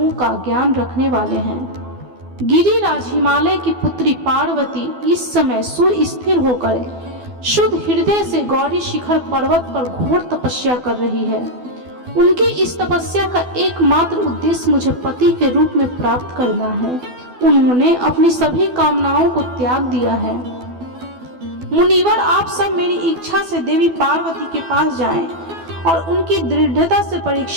का ज्ञान रखने वाले हैं। गिरिराज हिमालय की पुत्री पार्वती इस समय सुस्थिर होकर शुद्ध हृदय से गौरी शिखर पर्वत पर घोर तपस्या कर रही है। उनकी इस तपस्या का एकमात्र उद्देश्य मुझे पति के रूप में प्राप्त करना है। उन्होंने अपनी सभी कामनाओं को त्याग दिया है। मुनिवर, आप सब मेरी इच्छा से देवी पार्वती के पास जाएं और उनकी दृढ़ता से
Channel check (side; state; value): left; late; 12 ms